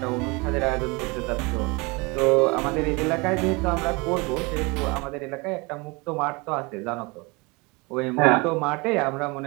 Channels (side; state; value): left; quieter; 26.9 dB